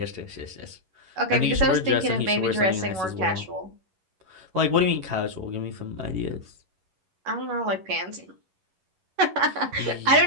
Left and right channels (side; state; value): left; late; 11 ms